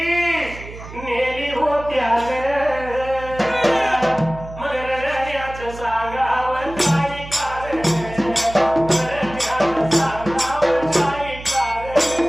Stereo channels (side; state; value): right; noise; hum, 14 dB below the sound